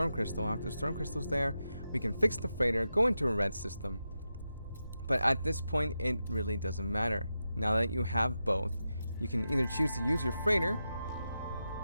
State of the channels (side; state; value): both; inverted; correlation -0.89